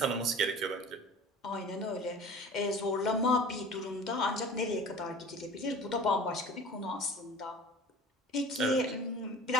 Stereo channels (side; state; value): both; normal; correlation 0.41